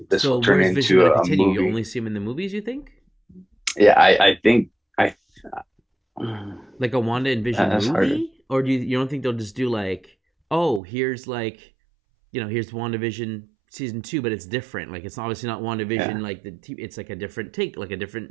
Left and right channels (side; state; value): left; drops out; at 10.8 s